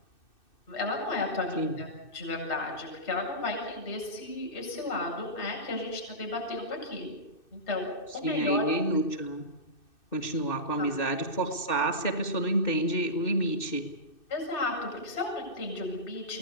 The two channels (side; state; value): right; late; 2.6 ms